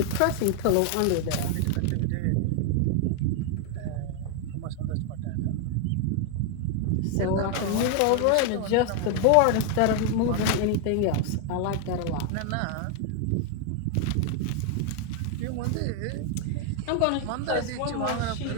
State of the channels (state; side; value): different; both; correlation 0.00